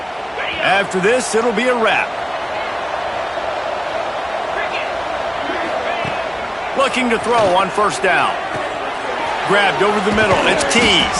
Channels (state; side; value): identical; both; correlation 1.00